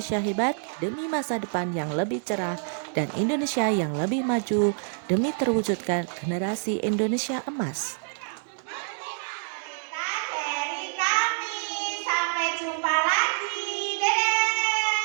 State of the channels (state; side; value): silent; left; digital silence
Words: hebat demi masa depan yang lebih cerah dan Indonesia yang lebih maju demi terwujudkan generasi Indonesia emas. dari kami. Sampai jumpa lagi. Dadah.